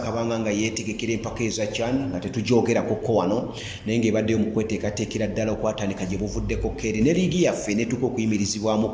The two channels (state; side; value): identical; both; correlation 1.00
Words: nga yeetegekera empaka eza CHAN nga tetujoogerako wano naye ng'ebaddeyo mu kweteekateekera ddala okwatandika gye buvuddeko keeri ne liigi yaffe netuuka